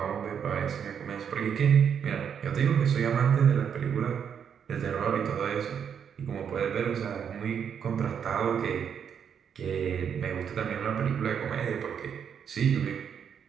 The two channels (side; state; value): left; quieter; 7.7 dB